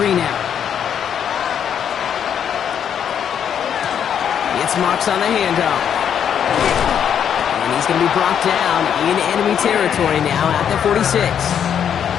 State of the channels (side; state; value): right; quieter; 8.6 dB